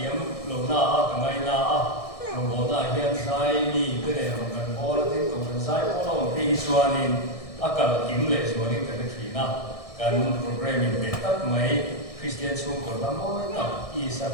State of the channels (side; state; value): right; late; 1.6 ms